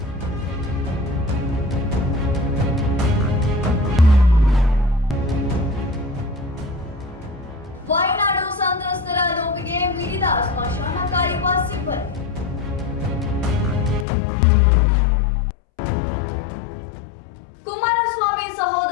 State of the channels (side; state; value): right; drops out; at 14.1 s